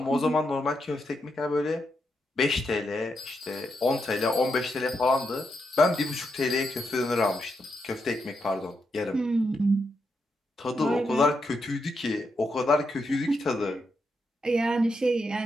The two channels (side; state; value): both; normal; correlation 0.83